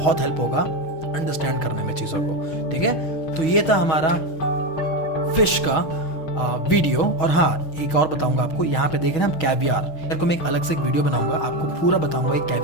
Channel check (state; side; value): late; right; 6.2 ms